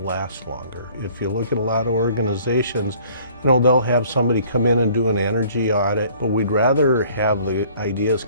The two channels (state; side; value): inverted; both; correlation -0.55